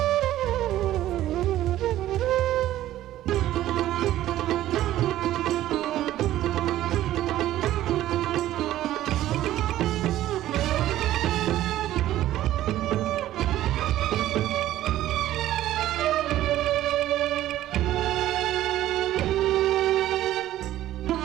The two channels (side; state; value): left; quieter; 13.8 dB